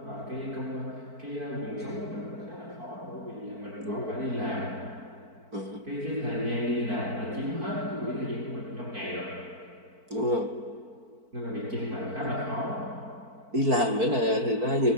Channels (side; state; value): left; late; 4.5 ms